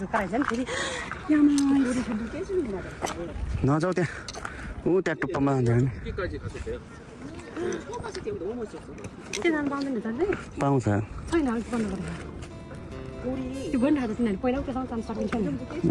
नि फेरि नजाऊ त्यहाँ ऊ त्यहाँ टुप्पामा पाउँछ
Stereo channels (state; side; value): identical; both; correlation 1.00